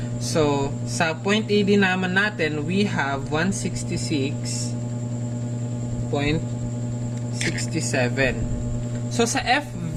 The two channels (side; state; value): both; identical; correlation 1.00